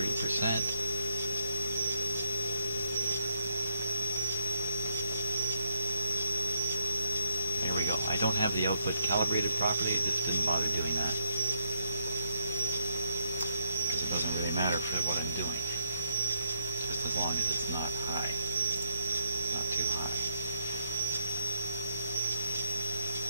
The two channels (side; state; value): both; inverted; correlation -0.73